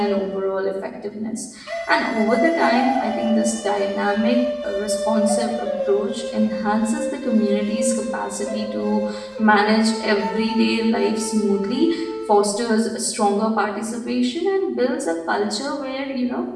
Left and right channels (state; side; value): identical; both; correlation 1.00